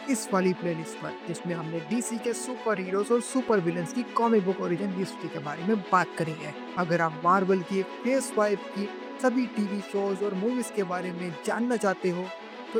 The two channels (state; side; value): identical; both; correlation 1.00